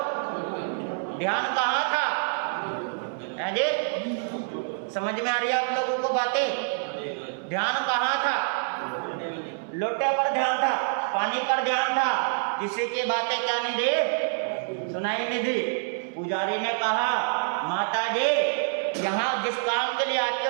ध्यान कहाँ था? जी समझ में आ रही है आप लोगों को बातें? ध्यान कहाँ था? लोटे पर ध्यान था, पानी पर ध्यान था, किसी की बातें क्या नहीं दी, सुनाई नहीं दी। पुजारी ने कहा माता जी यहाँ जिस काम के लिए आते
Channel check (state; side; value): silent; left; 60 dB below the other